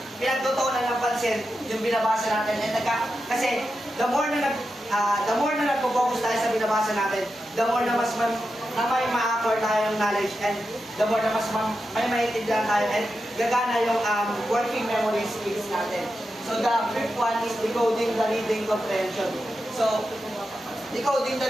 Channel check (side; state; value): both; normal; correlation 0.89